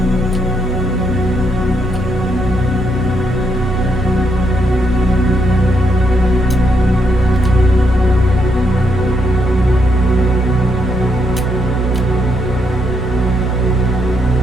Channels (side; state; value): both; normal; correlation 0.77